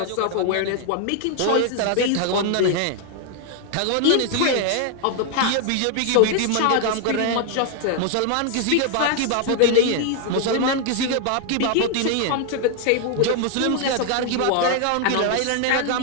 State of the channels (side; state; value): both; different; correlation 0.00